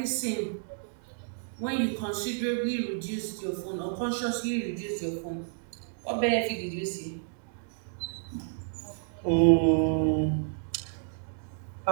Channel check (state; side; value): silent; left; digital silence